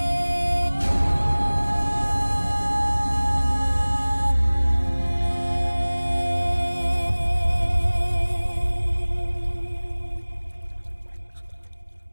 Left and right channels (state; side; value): inverted; both; correlation -1.00